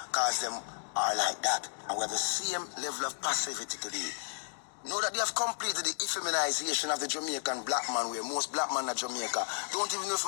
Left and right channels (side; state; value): right; silent; digital silence